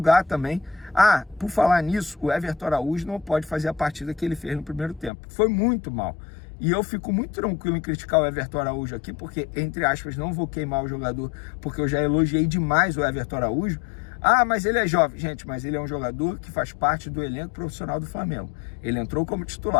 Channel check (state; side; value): drops out; right; at 5.1 s